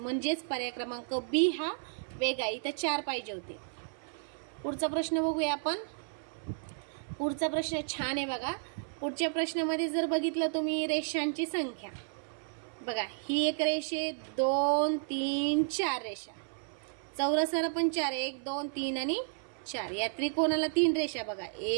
पर्याय क्रमांक बी हा वेगळा. इथं 4 पाहिजे होते. पुढचा प्रश्न बघूया आपण. पुढचा प्रश्न छान आहे बघा. पुढच्या प्रश्नामध्ये जर बघितलं तुम्ही रेषांची संख्या बघा, ही एक रेषे 2, 3, 4 रेषा. चौरसाला पण 4, 1, 2, 3 आणि 4. या त्रिकोणाला 3 रेषा बघा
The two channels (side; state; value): left; silent; 56 dB below the other